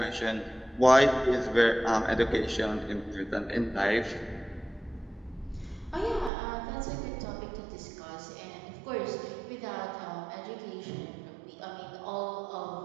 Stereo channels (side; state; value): left; drops out; at 6.3 s